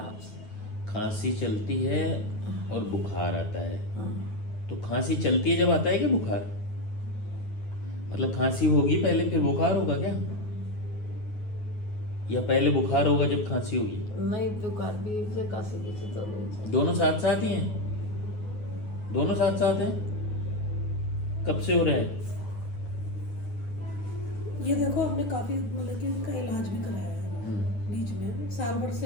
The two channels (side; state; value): right; late; 9.4 ms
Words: खांसी चलती है और बुखार आता है। तो खांसी चलती है जब आता है कि बुखार, मतलब खांसी होगी पहले फिर बुखार होगा क्या, या पहले बुखार होगा जब खांसी होगी? नहीं, बुखार भी से खांसी भी से तो दोनों साथ साथ ही हैं, दोनों साथ साथ हैं। कब से हो रहे हैं? ये देखो हमने काफी मतलब कि इनका इलाज भी कराया है बीच में, साल भर